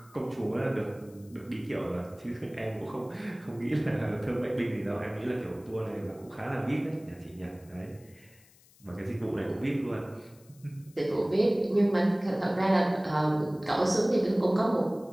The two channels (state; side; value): noise; left; hiss, 27 dB below the sound